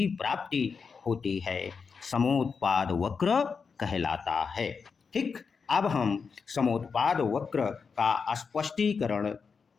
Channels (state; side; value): quieter; right; 5.5 dB